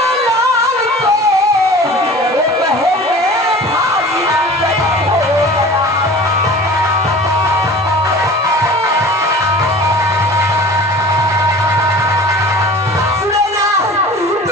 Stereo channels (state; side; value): normal; both; correlation 0.41